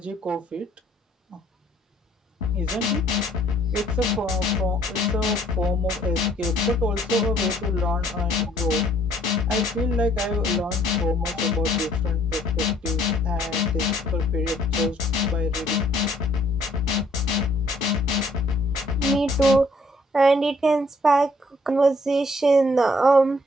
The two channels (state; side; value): normal; both; correlation 0.63